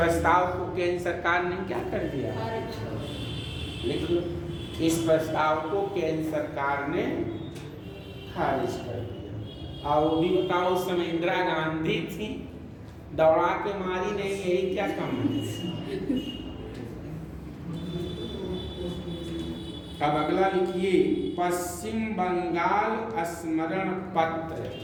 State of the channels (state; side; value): identical; both; correlation 1.00